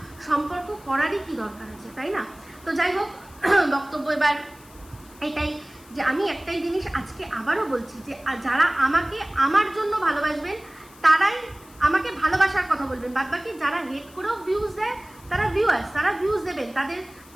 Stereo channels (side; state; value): left; noise; hiss, 24 dB below the sound